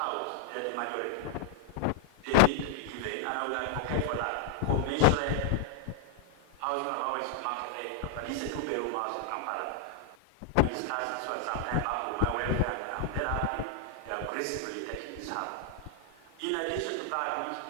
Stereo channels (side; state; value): both; different; correlation 0.00